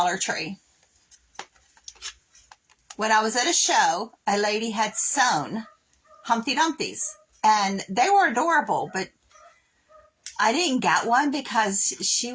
Tree. When I was at a show, a lady had sewn Humpty Dumpties, and they were adorable, but I didn't get one because she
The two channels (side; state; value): both; identical; correlation 1.00